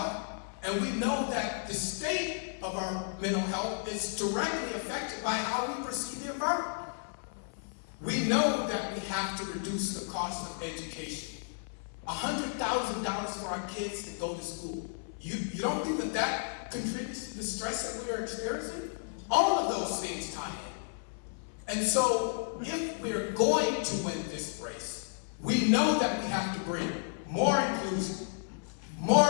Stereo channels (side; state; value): right; silent; 56 dB below the other